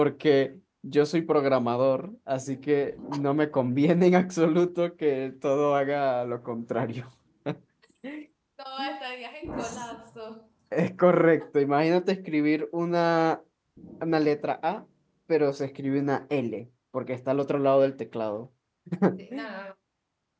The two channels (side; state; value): both; identical; correlation 1.00